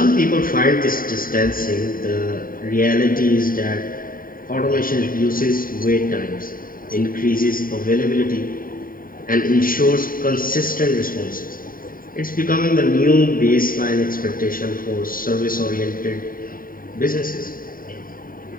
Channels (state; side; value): late; right; 0.41 ms